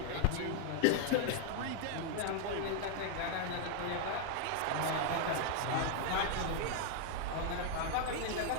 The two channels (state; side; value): different; both; correlation 0.00